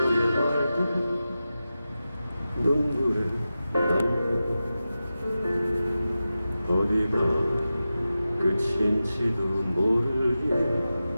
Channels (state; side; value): inverted; both; correlation -0.93